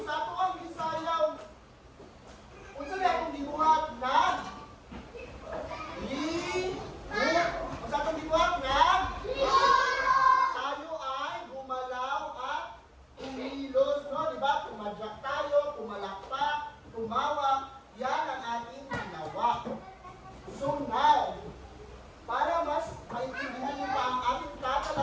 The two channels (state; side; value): identical; both; correlation 1.00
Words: sa tuwang isayaw, kung saan akong gibuhat na kung saan akong gibuhat na tayo ay gumalaw at kumilos, no? Diba? Tumadyak tayo, pumalakpak, tumawa. Yan ang ating ginawa. So now, para mas maintindihan niyo pa ang ating